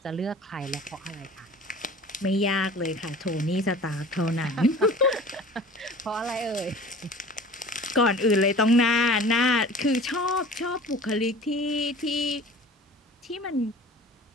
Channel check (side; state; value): both; normal; correlation 0.42